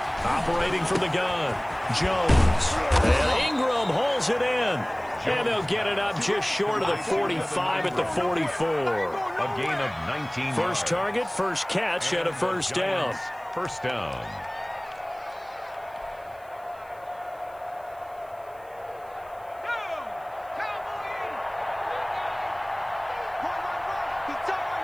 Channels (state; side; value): noise; right; hiss, 28 dB below the sound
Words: Operating from the gun, Jones. And Ingram holds it in. And they'll get it up just short of the 45 at the 44. A gain of 19 yards. First target, first catch, and a first down. First down.